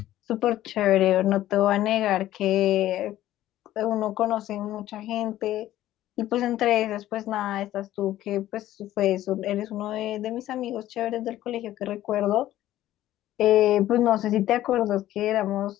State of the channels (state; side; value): quieter; right; 14.0 dB